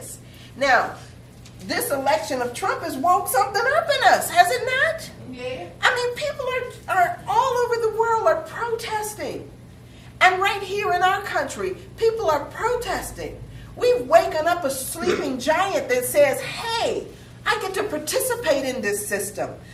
Now, this election of Trump has woke something up in us, has it not? Yeah. I mean, people are all over the world are protesting. And right here in our country, people are protesting. We've waken up a sleeping giant that says, hey, I get to participate in this system.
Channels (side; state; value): both; identical; correlation 1.00